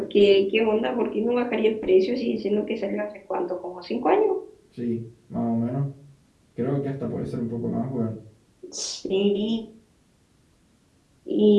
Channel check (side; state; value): both; identical; correlation 1.00